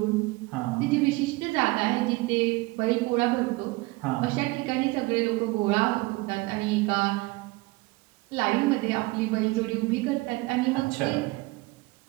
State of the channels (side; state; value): left; quieter; 23.1 dB